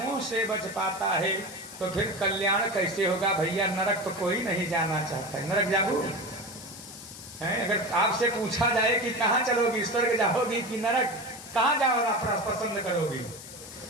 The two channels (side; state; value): left; noise; hiss, 14 dB below the sound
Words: से बच पाता है। तो फिर कल्याण कैसे होगा भैया? नरक तो कोई नहीं जाना चाहता है। नरक जाओ है? अगर आपसे पूछा जाए कि कहाँ चलोगी, स्वर्ग जाओगी कि नरक, कहाँ जाओ पसंद करोगी?